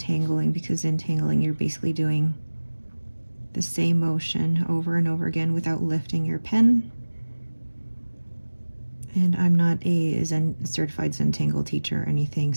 because Zentangling you're basically doing the same motion over and over again without lifting your pen. And I'm not a certified Zentangle teacher or anything,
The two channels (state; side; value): inverted; both; correlation -1.00